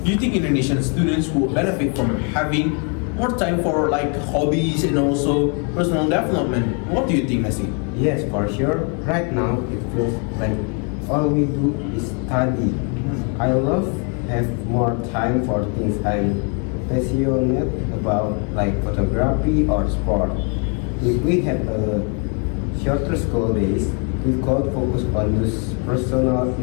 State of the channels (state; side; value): quieter; right; 38.0 dB